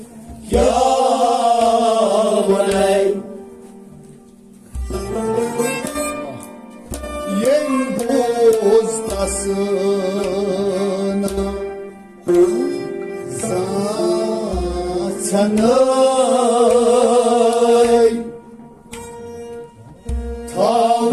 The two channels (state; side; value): identical; both; correlation 1.00